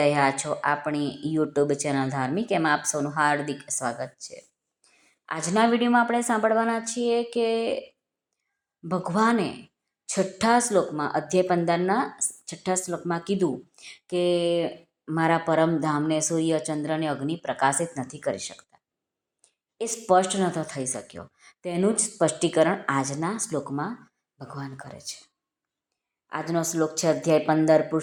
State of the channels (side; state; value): both; identical; correlation 1.00